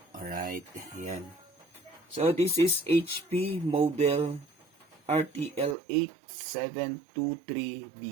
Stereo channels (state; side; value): drops out; left; at 5.8 s